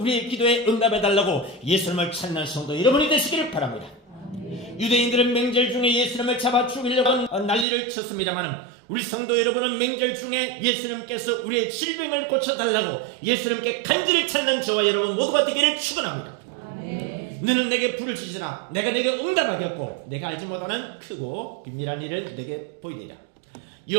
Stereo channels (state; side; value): drops out; left; at 7.7 s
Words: 기도에 응답해달라고 예수님을 찾는 성도 여러분이 되시기를 바랍니다. 유대인들은 명절 중에 예수님을 잡아 죽이려고 난리를 쳤습니다만 우리 성도 여러분은 명절 중에 예수님께서 우리의 질병을 고쳐달라고 예수님께 간절히 찾는 저와 여러분 모두가 되기를 축원합니다. 너는 내게 불을 주시라. 내가 내게 응답하였고 내가 알지 못하는 크고 비밀한 일을 내게 보이리라.